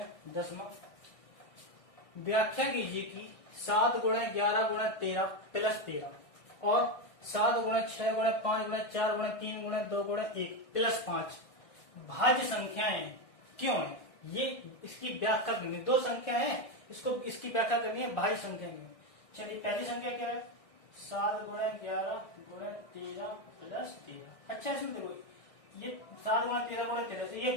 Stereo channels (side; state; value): right; late; 1.6 ms